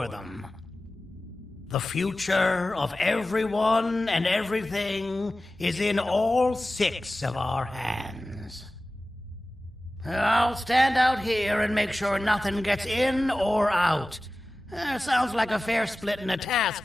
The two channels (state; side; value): normal; both; correlation 0.96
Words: them. The future of everyone and everything is in all 6 of our hands. I'll stand out here and make sure nothing gets in or out. Sounds like a fair splitting of